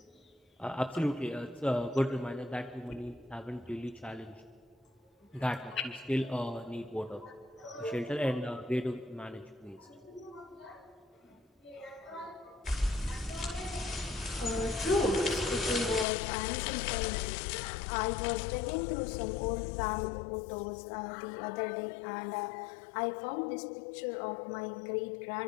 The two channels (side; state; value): right; drops out; at 16.1 s